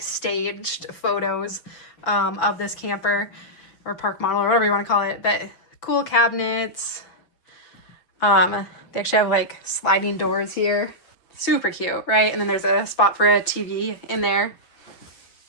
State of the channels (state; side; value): late; right; 5.9 ms